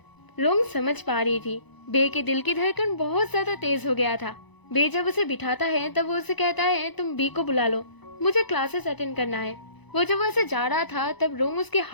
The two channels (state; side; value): late; right; 1.0 ms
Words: रोंग समझ पा रही थी बे के दिल की धड़कन बहुत ज्यादा तेज हो गया था। बे जब उसे बिठाता है तब वो उसे कहता है, तुम बी को बुला लो, मुझे क्लासेस अटेंड करना है। वो जब वहाँ से जा रहा था तब रोंग उसके